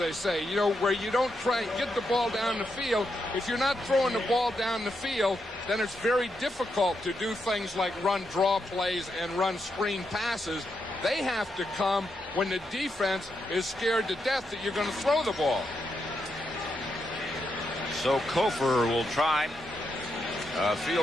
say, you know, where you don't try and get the ball down the field. If you're not throwing the ball down the field, then it's very difficult to do things like run draw plays and run screen passes. They have to come when the defense is scared to death that you're going to throw the ball. So Kofor will try a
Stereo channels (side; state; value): both; normal; correlation 0.83